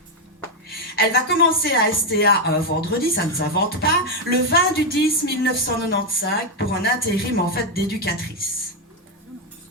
Elle va commencer à STA un vendredi, ça ne s'invente pas, le 20 du 10 1995 pour un intérim en fait d'éducatrice.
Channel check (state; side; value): normal; both; correlation 0.03